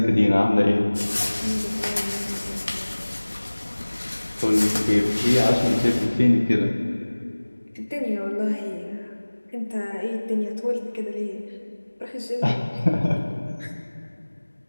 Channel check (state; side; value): inverted; both; correlation -1.00